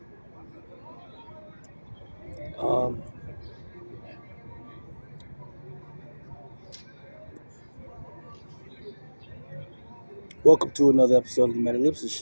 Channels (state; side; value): inverted; both; correlation -1.00